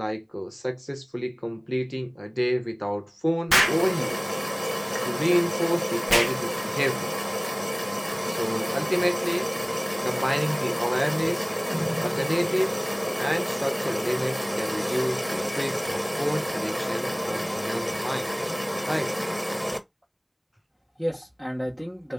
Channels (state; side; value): identical; both; correlation 1.00